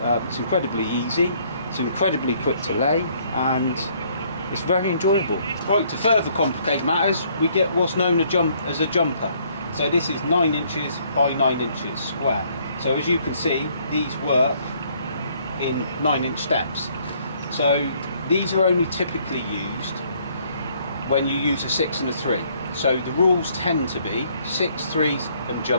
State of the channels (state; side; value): inverted; both; correlation -0.65